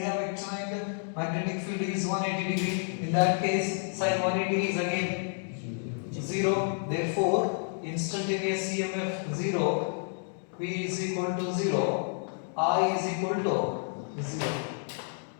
vector and magnetic field is 180 degree. In that case, sin 180 is again 0. Therefore, instantaneous EMF 0, V is equal to 0, I is equal to 0.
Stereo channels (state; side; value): silent; right; 58 dB below the other